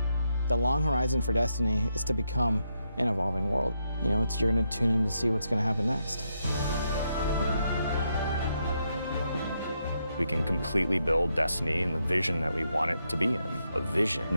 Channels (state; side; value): inverted; both; correlation -0.81